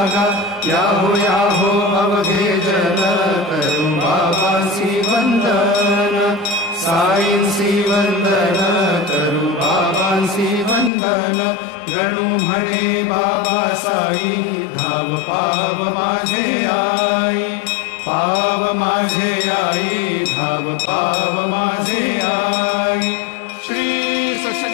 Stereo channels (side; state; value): right; drops out; at 10.9 s